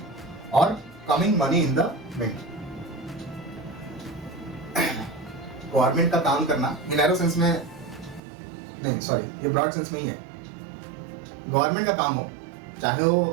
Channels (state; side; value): drops out; left; at 8.2 s